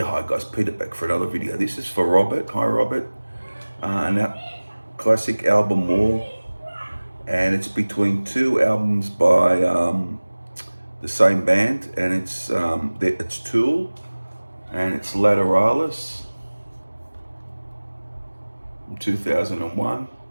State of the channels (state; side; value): inverted; both; correlation -1.00